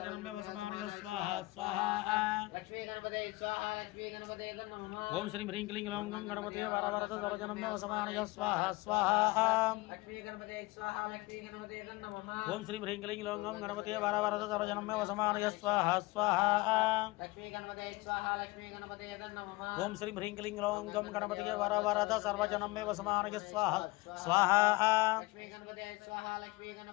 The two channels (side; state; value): right; quieter; 21.6 dB